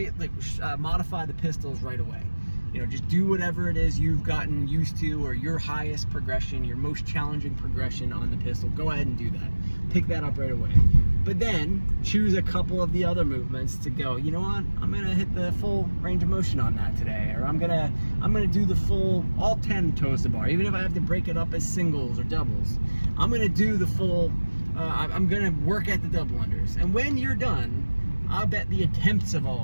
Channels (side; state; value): both; inverted; correlation -1.00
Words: modify the pistols right away. Just do whatever it is you've gotten used to, or your highest progression, your most challenging progression on the pistol. Go ahead and do that. Pick that up right away. But then choose a couple of the other movements to go, you know what? I'm gonna hit the full range of motion on that today, or I'm gonna do the full, all 10 toes to bar, even if I have to break it up as singles or doubles. I'm gonna do the full, I'm gonna work at the double unders. And when you're done, I'll bet the attempts of all